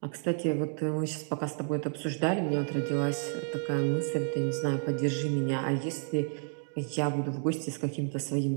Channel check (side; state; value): left; silent; 57 dB below the other